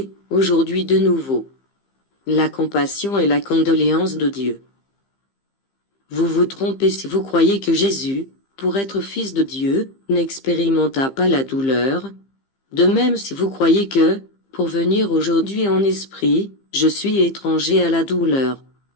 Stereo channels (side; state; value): right; late; 15 ms